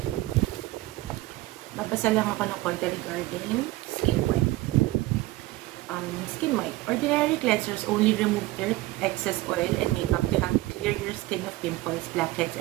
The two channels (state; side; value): quieter; left; 18.5 dB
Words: Babasa lang ako ng konti regarding Skin White. Skin White. Ordinary cleansers only remove dirt, excess oil, and makeup to help clear your skin of pimples, blackheads,